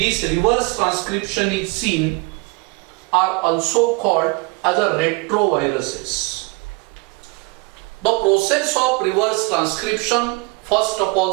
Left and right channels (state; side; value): quieter; left; 27.1 dB